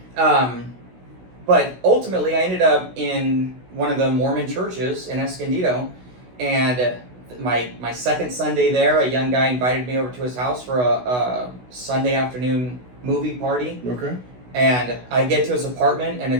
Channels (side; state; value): left; late; 16 ms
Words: but ultimately, I ended up in one of the Mormon churches in Escondido, and my second Sunday there, a young guy invited me over to his house for a Sunday afternoon movie party. Okay. And I get to his apartment, and